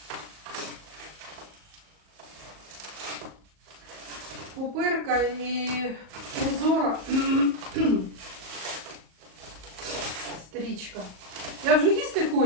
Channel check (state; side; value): late; left; 38 ms